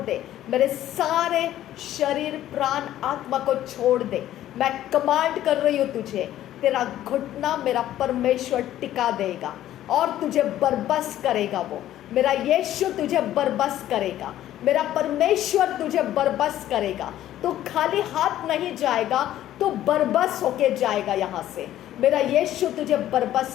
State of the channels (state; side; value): quieter; right; 12.8 dB